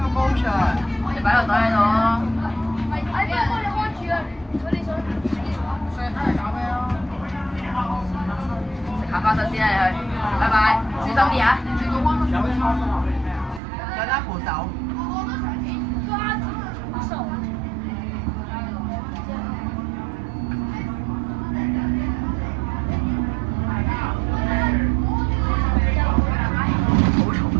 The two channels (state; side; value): drops out; left; at 13.6 s